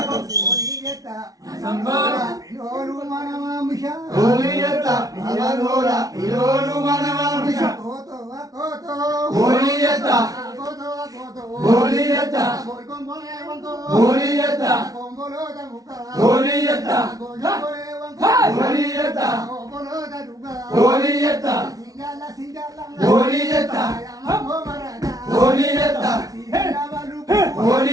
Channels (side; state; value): left; late; 0.18 ms